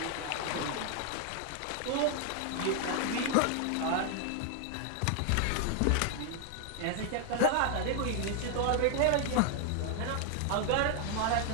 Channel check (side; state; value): both; different; correlation 0.00